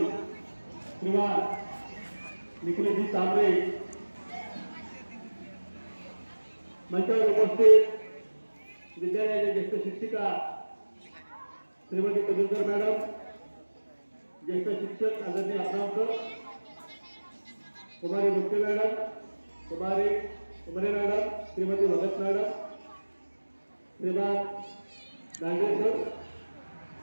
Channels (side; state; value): both; inverted; correlation -1.00